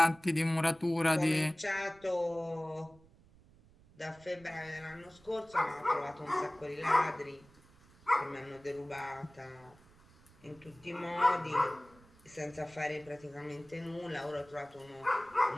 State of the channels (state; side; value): noise; right; rumble, 26 dB below the sound